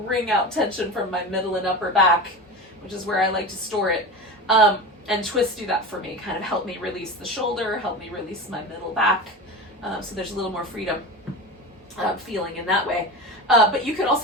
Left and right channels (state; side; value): normal; both; correlation 0.27